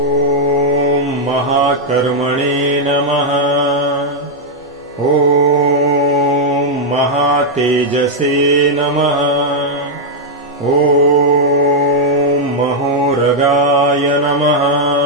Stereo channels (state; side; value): normal; both; correlation -0.03